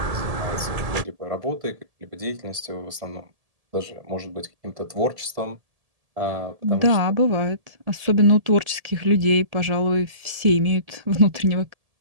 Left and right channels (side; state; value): left; late; 1.7 ms